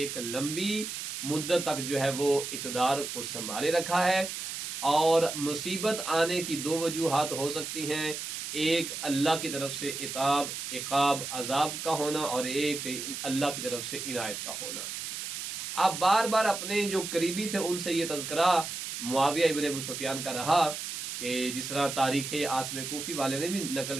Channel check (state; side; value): noise; right; hiss, 6 dB below the sound